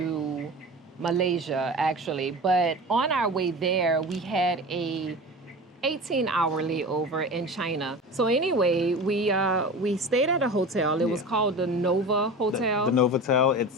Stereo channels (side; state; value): both; normal; correlation 0.33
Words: Malaysia, actually. But on our way there, we had a 18-hour layover in China. So anyway, we stayed at a hotel. It was called the Nova Hotel. The Novotel.